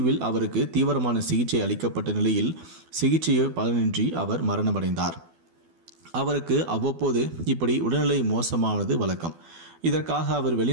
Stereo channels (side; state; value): left; late; 12 ms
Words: அவருக்கு தீவிரமான சிகிச்சை அளிக்கப்பட்ட நிலையில் சிகிச்சை பலனின்றி அவர் மரணமடைந்தார். அவருக்கு அவ்வப்போது இப்படி உடல்நிலை மோசமானது வழக்கம். இதற்காக அவர்